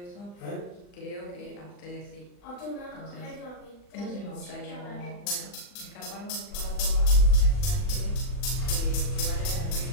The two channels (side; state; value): right; late; 40 ms